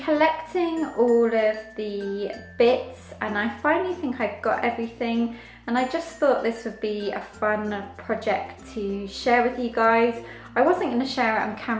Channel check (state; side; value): identical; both; correlation 1.00